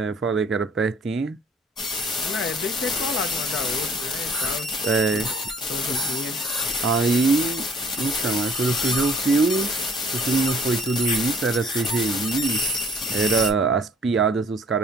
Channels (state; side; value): normal; both; correlation 0.57